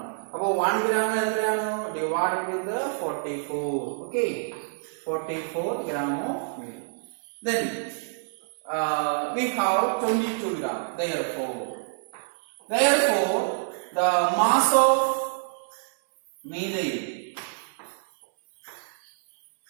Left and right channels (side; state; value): left; silent; 60 dB below the other